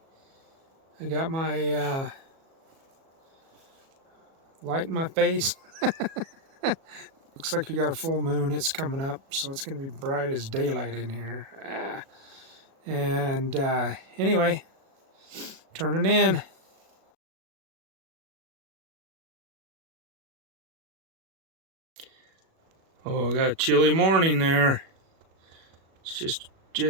I got my light in my face. Looks like we got a full moon, it's coming up, so it's going to be bright as daylight in here. And anyway, turning in. Oh, I got a chilly morning there. It's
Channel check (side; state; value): left; late; 37 ms